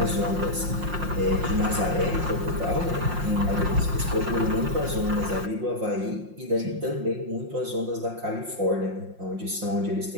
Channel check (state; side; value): late; left; 5.7 ms